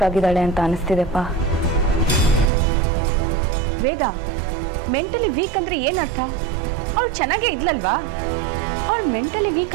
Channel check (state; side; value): drops out; left; at 2.5 s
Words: ಆಗಿದ್ದಾಳೆ ಅಂತ ಅನಿಸ್ತಿದೆಪ್ಪ. ವೇದ, ಮೆಂಟಲಿ ವೀಕ್ ಅಂದ್ರೆ ಏನರ್ಥ? ಅವಳು ಚೆನ್ನಾಗೇ ಇದ್ಲಲ್ವಾ? ಅವಳು ಮೆಂಟಲಿ ವೀಕ್